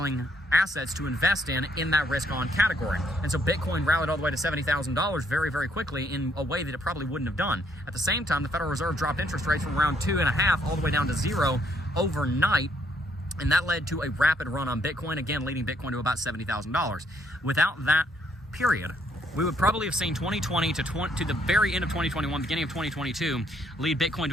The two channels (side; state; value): both; normal; correlation 0.70